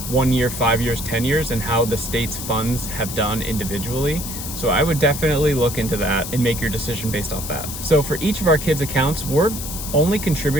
1 year, 5 years, 10 years, and how the state's funds have done individually. So I would definitely look into that and make your decision based off that. So for each of our kids' accounts, we're only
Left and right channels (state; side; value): noise; left; hiss, 8 dB below the sound